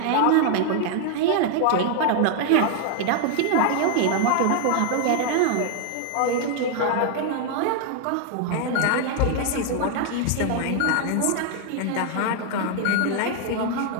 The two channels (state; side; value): different; both; correlation 0.00